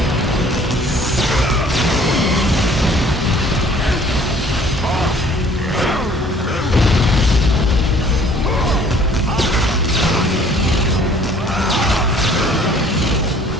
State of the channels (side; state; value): both; normal; correlation 0.55